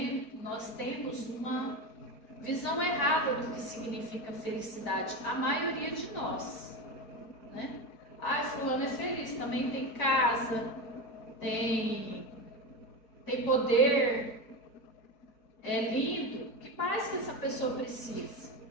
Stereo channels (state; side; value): late; right; 4.5 ms